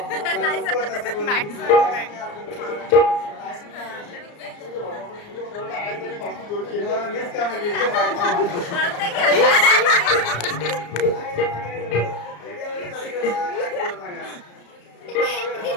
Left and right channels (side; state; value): right; late; 34 ms